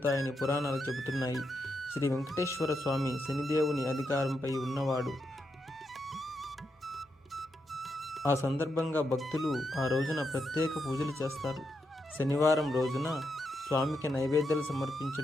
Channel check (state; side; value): normal; both; correlation 0.83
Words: పురాణాలు చెబుతున్నాయి. శ్రీ వెంకటేశ్వర స్వామి శనిదేవుని అధికారంపై ఉన్నవాడు. ఆ సందర్భంగా భక్తులు ఆ రోజున ప్రత్యేక పూజలు చేస్తారు. శనివారం రోజున స్వామికి నైవేద్యాలు